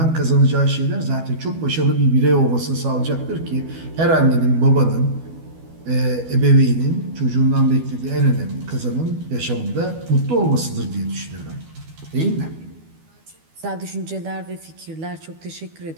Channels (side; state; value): left; late; 12 ms